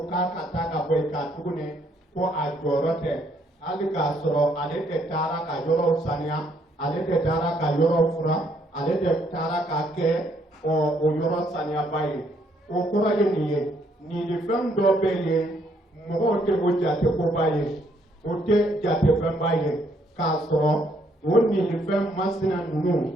k'a ka taa ka bɔ yen ka tuguni ko a jɔyɔrɔ tɛ hali k'a sɔrɔ ale de taara ka yɔrɔw saniya ale de taara ka yɔrɔ fura ale de taara ka kɛ o yɔrɔ saniyaba ye o kɔrɔ ye nin ye nin fɛn dɔ bɛ yen mɔgɔw tɛ o jate koba ye o tɛ jate fɛnba ye k'a sɔrɔ o nin fɛn masina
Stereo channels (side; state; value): both; normal; correlation 0.69